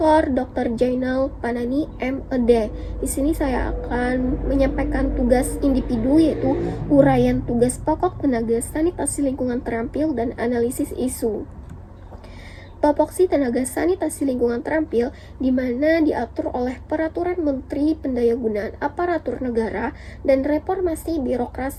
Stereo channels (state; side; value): identical; both; correlation 1.00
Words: Dr. Jainal Panani MED. Di sini saya akan menyampaikan tugas individu, yaitu uraian tugas pokok tenaga sanitasi lingkungan terampil dan analisis isu. Topoksi tenaga sanitasi lingkungan terampil di mana diatur oleh Peraturan Menteri Pendayagunaan Aparatur Negara dan Reformasi